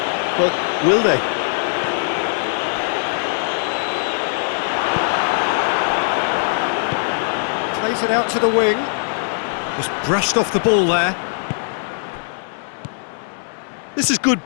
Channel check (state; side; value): silent; right; digital silence